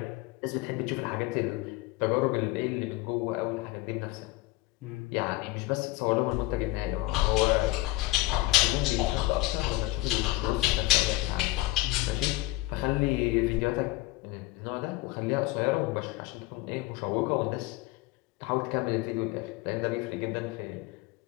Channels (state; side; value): quieter; right; 19.5 dB